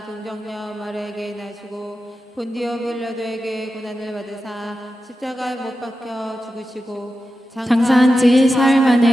동정녀 마리아에게 나시고 본디오 빌라도에게 고난을 받으사 십자가에 못 박혀 죽으시고 장사한 지 사흘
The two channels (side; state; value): both; normal; correlation 0.91